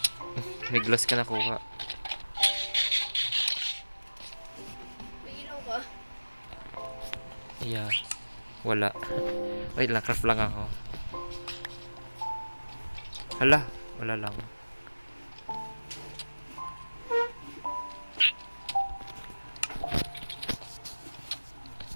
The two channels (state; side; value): inverted; both; correlation -1.00